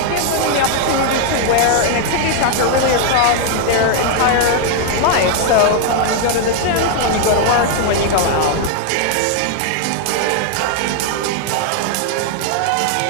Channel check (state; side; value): different; both; correlation 0.00